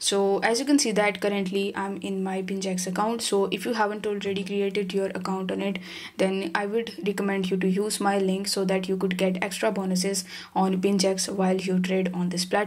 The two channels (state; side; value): identical; both; correlation 1.00